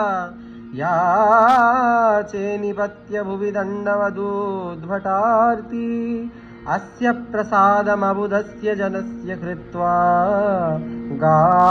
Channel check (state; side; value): identical; both; correlation 1.00